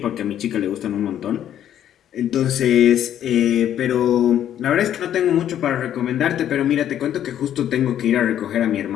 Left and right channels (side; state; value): right; quieter; 10.7 dB